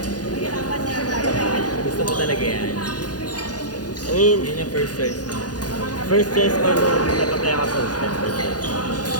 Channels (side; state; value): right; late; 0.69 ms